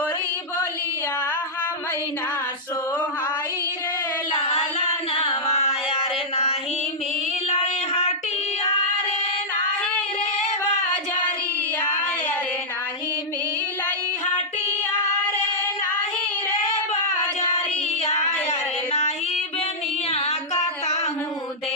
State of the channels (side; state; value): both; normal; correlation -0.09